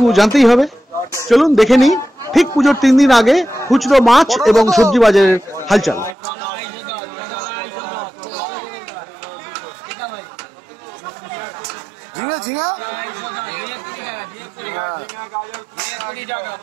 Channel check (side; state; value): left; drops out; at 6.2 s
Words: জানতেই হবে। চলুন দেখে নিই ঠিক পুজোর 3 দিন আগে খুচরো মাছ এবং সবজি বাজারের হালচাল। ঝিঙে ঝিঙে